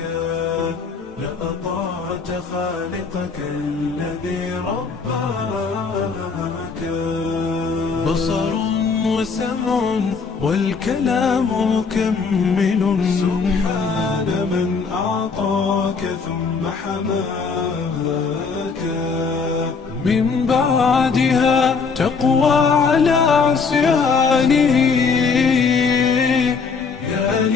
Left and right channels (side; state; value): right; quieter; 5.1 dB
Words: لأطعت خالقك الذي رباك بصر وسمع والكلام مكمل سبحان من أعطاك ثم حماك من بعدها تقوى على عصيانه يا